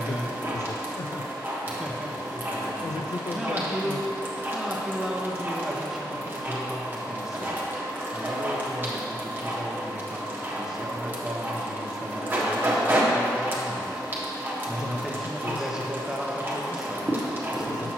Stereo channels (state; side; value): normal; both; correlation 0.75